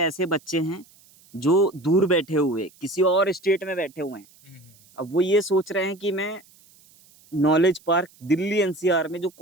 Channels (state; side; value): noise; right; hiss, 28 dB below the sound